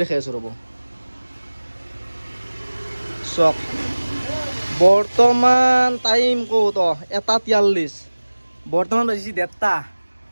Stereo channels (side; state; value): both; inverted; correlation -1.00